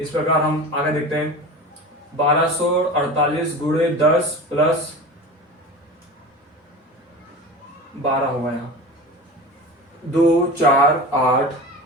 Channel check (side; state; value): both; normal; correlation 0.32